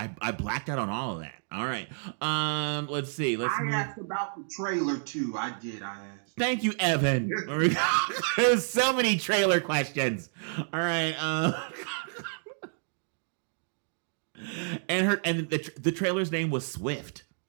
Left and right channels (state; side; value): silent; left; digital silence